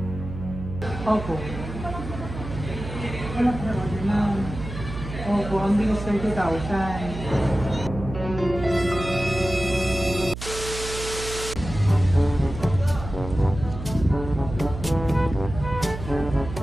Opo. Wala po na order na. Opo, ang bilis 30,000.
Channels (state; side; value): noise; right; hum, 9 dB below the sound